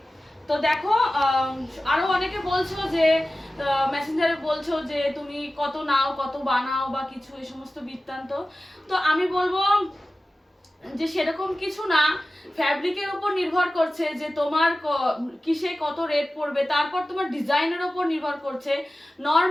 তো দেখো, আরো অনেকে বলছো যে মেসেঞ্জারে বলছো যে তুমি কত নাও, কত বানাও বা কিছু এই সমস্ত বৃত্তান্ত। তো আমি বলবো যে সেরকম কিছু না, ফ্যাব্রিকের উপর নির্ভর করছে যে তোমার কিসে কত রেট পড়বে, তারপর তোমার ডিজাইনের উপর নির্ভর করছে।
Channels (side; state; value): both; normal; correlation 0.95